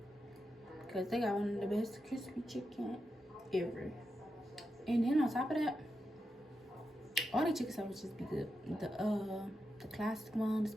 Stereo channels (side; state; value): both; normal; correlation 0.87